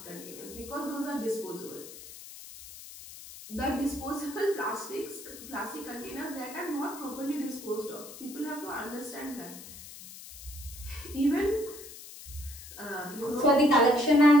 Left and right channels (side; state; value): left; noise; hiss, 15 dB below the sound